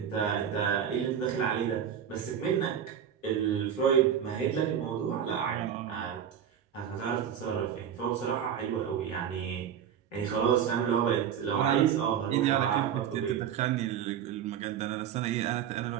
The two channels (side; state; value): left; quieter; 8.9 dB